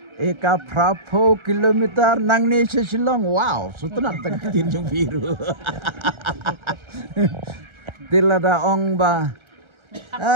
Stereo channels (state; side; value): late; left; 1.3 ms